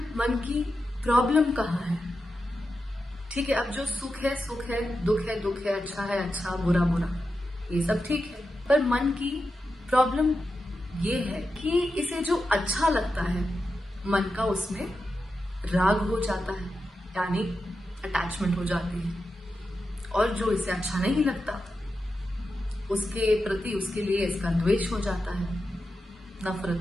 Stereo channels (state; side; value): normal; both; correlation 0.89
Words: की प्रॉब्लम कहाँ है? ठीक है, अब जो सुख है, दुख है, अच्छा है अच्छा, बुरा बुरा, ये सब ठीक है। पर मन की प्रॉब्लम ये है कि इसे जो अच्छा लगता है, मन का उसमें राग हो जाता है, यानी अटैचमेंट हो जाती है। और जो इसे अच्छा नहीं लगता उसके प्रति, उसके लिए इसका द्वेष हो जाता है, नफरत,